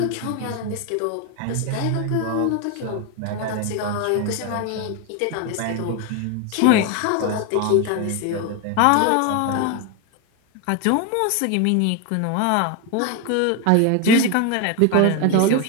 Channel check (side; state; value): both; different; correlation 0.02